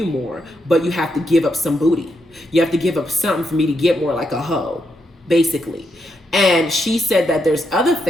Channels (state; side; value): normal; both; correlation 0.81